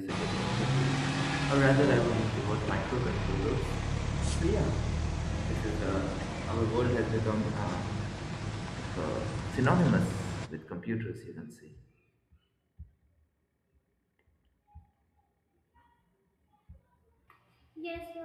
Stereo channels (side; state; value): both; identical; correlation 1.00